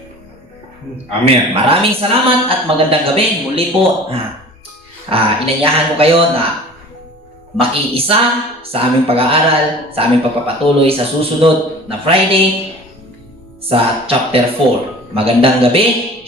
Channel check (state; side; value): normal; both; correlation 0.43